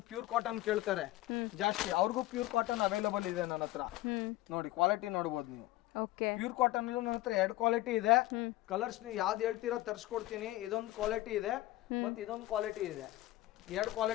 ಪ್ಯೂರ್ ಕಾಟನ್ ಕೇಳ್ತಾರೆ ಜಾಸ್ತಿ, ಅವ್ರಿಗೂ ಪ್ಯೂರ್ ಕಾಟನ್ ಅವೈಲಬಲ್ ಇದೆ ನನ್ನ ಹತ್ರ. ನೋಡಿ ಕ್ವಾಲಿಟಿ ನೋಡ್ಬೋದು ನೀವು. ಪ್ಯೂರ್ ಕಾಟನ್ ಅಲ್ಲೂ ನನ್ನ ಹತ್ರ 2 ಕ್ವಾಲಿಟಿ ಇದೆ. ಕಲರ್ಸ್ ನೀವು ಯಾವ್ದು ಹೇಳ್ತೀರಾ ತರಿಸ್ಕೊಡ್ತೀನಿ. ಇದೊಂದು ಕ್ವಾಲಿಟಿ ಇದೆ, ಮತ್ತೆ ಇದೊಂದು ಕ್ವಾಲಿಟಿ ಇದೆ. 2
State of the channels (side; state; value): right; quieter; 17.2 dB